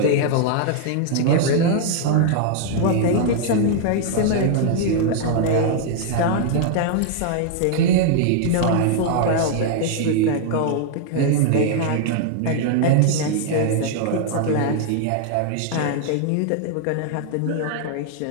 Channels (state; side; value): different; both; correlation -0.01